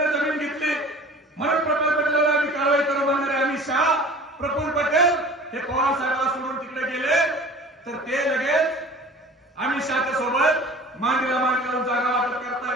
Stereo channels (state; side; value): normal; both; correlation 0.43